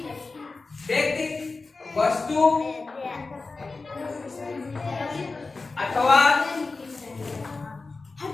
व्यक्ति, वस्तु अथवा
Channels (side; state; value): right; quieter; 3.8 dB